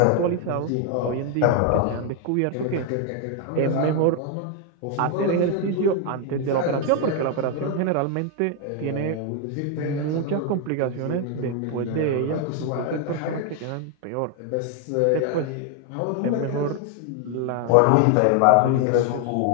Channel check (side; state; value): both; different; correlation 0.00